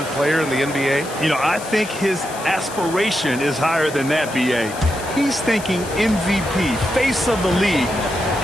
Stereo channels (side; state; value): left; noise; hiss, 14 dB below the sound